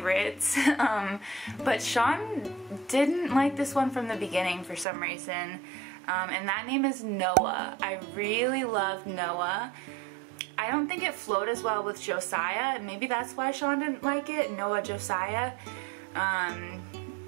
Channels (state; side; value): drops out; left; at 4.9 s